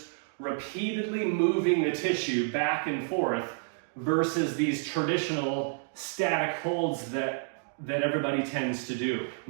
repeatedly moving the tissue back and forth versus these traditional static holds that everybody tends to do,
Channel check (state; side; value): silent; left; digital silence